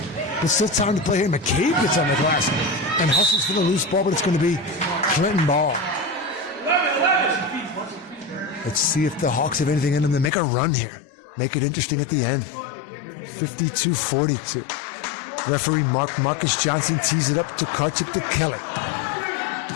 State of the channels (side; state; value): right; drops out; at 10.3 s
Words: But still time to play here. McCabe gets on the glass and hustles for the loose ball, but it's going to be Clinton ball. Let's see if the Hawks have anything in them to make a run here. Make it interesting at the end. 52-42. Referee Marcus Johnson tees it up to Tokarczyk to Kelly.